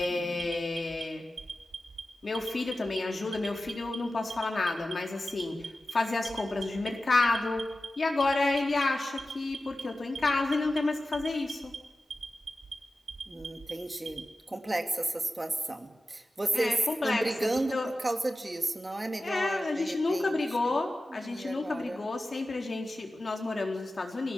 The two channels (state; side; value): normal; both; correlation 0.94